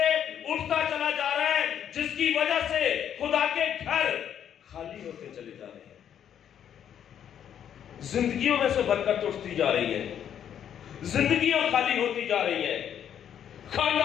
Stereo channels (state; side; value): quieter; right; 9.3 dB